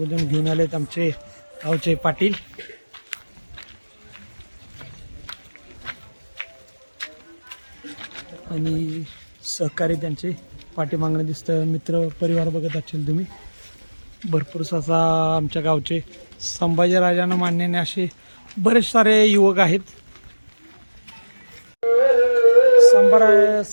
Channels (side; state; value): both; inverted; correlation -1.00